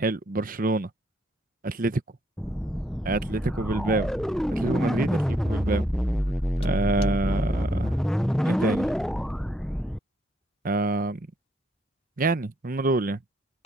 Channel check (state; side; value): normal; both; correlation 0.71